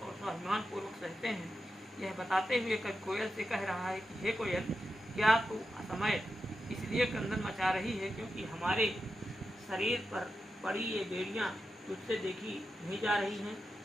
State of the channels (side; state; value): both; normal; correlation 0.89